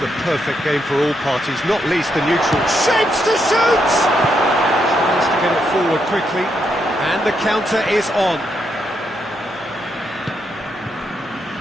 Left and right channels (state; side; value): noise; left; hum, 30 dB below the sound